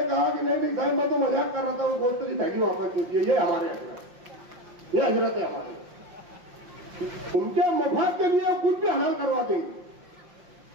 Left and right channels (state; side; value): late; left; 5.6 ms